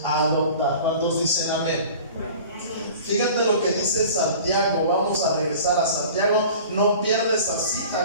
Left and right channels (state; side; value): inverted; both; correlation -0.42